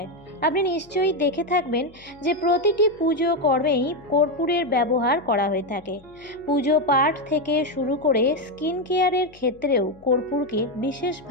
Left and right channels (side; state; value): left; noise; hum, 27 dB below the sound